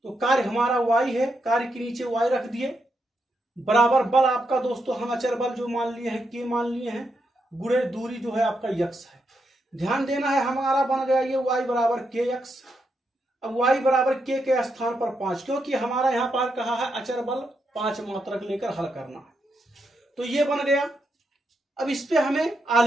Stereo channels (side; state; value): both; normal; correlation 0.82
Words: तो कार्य हमारा y है, कार्य के नीचे y रख दिए, बराबर बल आपका दोस्तों हम अचर बल जो मान लिए हैं k मान लिए हैं, गुणे दूरी जो है आपका x है। ध्यान देना है हमारा बन गया ये y बराबर kx। अब y बराबर k के स्थान पर 5, क्योंकि हमारा यहाँ पर कहा है अचर बल 5 मात्रक लेकर हल करना है, तो ये बन गया। अब इस पे हमें